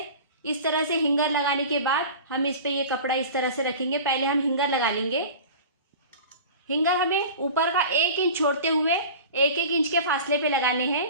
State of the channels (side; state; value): both; inverted; correlation -0.37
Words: इस तरह से हिंगर लगाने के बाद हम इस पे ये कपड़ा इस तरह से रखेंगे। पहले हम हिंगर लगा लेंगे। हिंगर हमें ऊपर का 1 इंच छोड़ते हुए 1-1 इंच के फासले पे लगाने हैं।